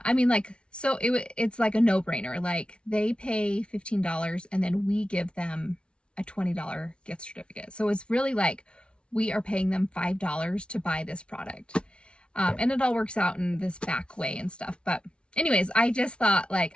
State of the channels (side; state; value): right; late; 0.058 ms